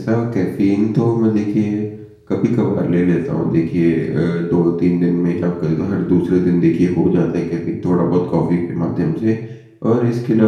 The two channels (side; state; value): both; identical; correlation 1.00